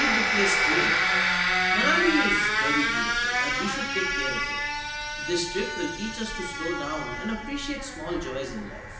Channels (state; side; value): identical; both; correlation 1.00